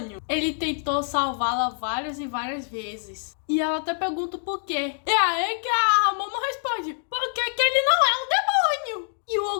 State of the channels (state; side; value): silent; right; 62 dB below the other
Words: ele tentou salvá-la várias e várias vezes. E ela até pergunta o porquê. E aí que a Momo responde: porque que ele não é um demônio? E o